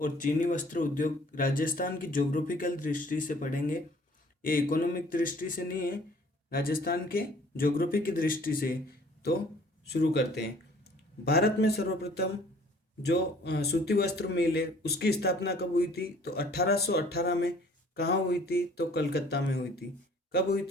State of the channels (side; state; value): both; normal; correlation 0.55